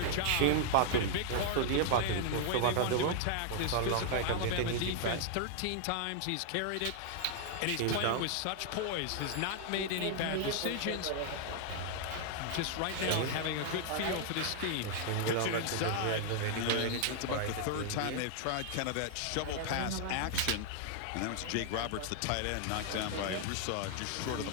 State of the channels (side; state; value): both; different; correlation 0.00